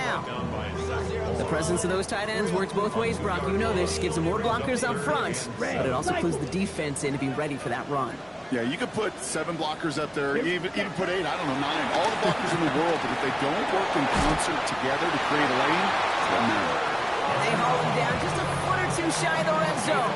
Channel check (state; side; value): identical; both; correlation 1.00